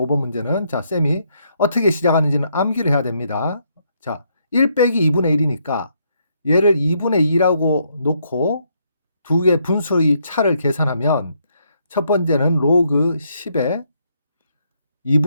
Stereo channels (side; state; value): both; inverted; correlation -0.74